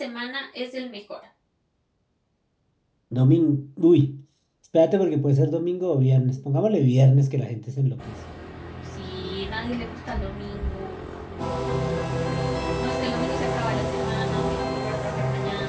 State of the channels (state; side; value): identical; both; correlation 1.00